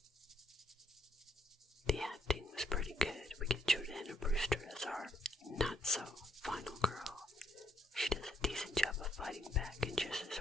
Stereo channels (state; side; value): normal; both; correlation 0.73